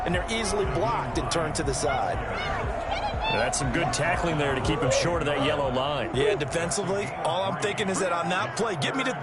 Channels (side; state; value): both; identical; correlation 1.00